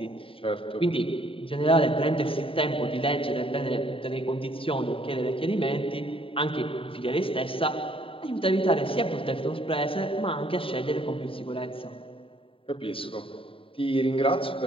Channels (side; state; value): right; late; 0.26 ms